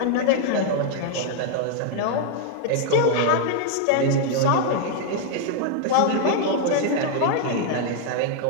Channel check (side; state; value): both; different; correlation 0.00